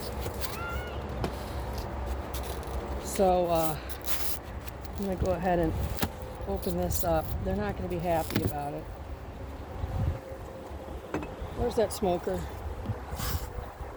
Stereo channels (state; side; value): identical; both; correlation 1.00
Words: So I'm going to go ahead and open this up. They're not going to be happy about it. Where's that smoker?